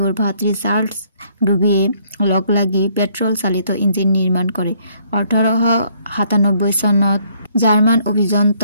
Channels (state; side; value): inverted; both; correlation -0.66